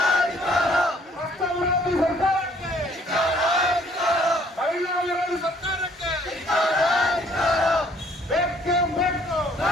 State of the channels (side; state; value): both; normal; correlation 0.61